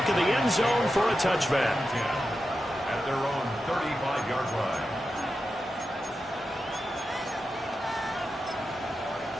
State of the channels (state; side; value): normal; both; correlation 0.90